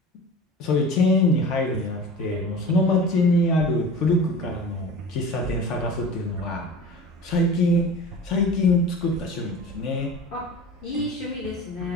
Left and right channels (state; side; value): normal; both; correlation 0.37